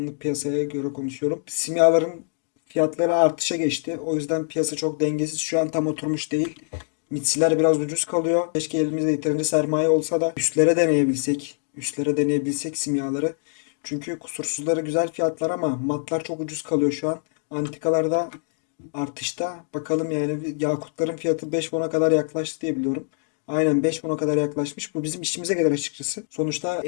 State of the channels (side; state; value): right; silent; digital silence